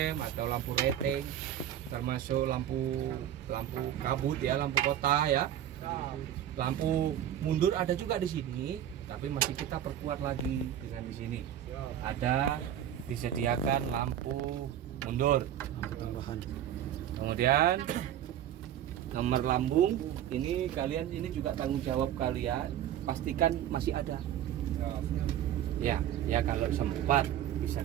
atau lampu rating, termasuk lampu kabut ya, lampu kota ya. Lampu mundur ada juga di sini, tapi masih kita perkuat lagi dengan di sini. Ada disediakan lampu mundur. Lampu tambahan. Kemudian nomor lambung ini kalian, ini juga tanggung jawab kalian, pastikan masih ada. Ya kalau sempat bisa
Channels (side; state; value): left; quieter; 10.9 dB